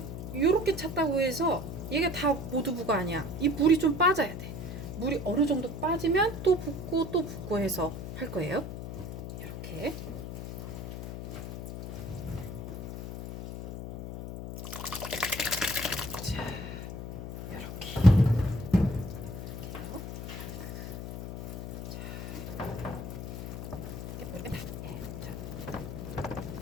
요렇게 찼다고 해서 이게 다 모두부가 아니야. 이 물이 좀 빠져야 돼. 물이 어느 정도 빠지면 또 붓고 또 붓고 해서 할 거예요. 이렇게. 자, 이렇게.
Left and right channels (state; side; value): noise; left; hum, 7 dB below the sound